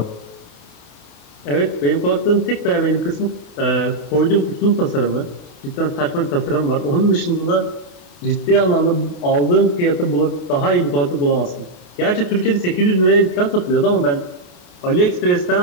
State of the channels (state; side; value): late; right; 28 ms